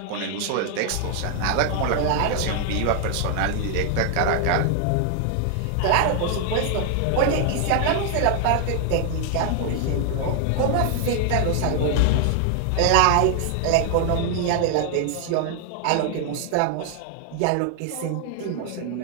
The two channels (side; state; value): both; different; correlation 0.00